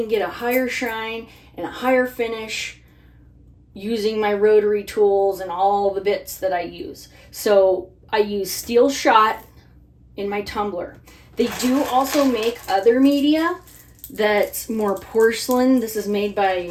get a higher shine and a higher finish using my rotary tools and all the bits that I use. So I use steel shot in my tumbler. They do also make other media that's more porcelain. This is made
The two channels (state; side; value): identical; both; correlation 1.00